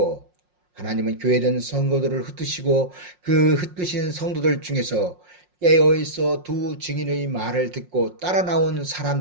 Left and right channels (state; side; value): late; left; 5.6 ms